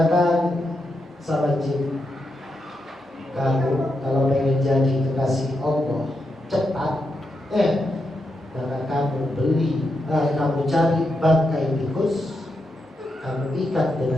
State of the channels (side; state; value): both; normal; correlation 0.84